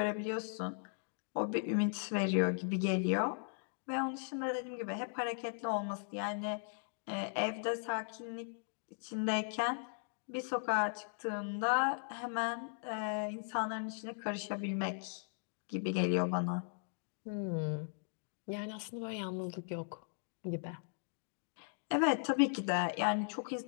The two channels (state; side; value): silent; right; digital silence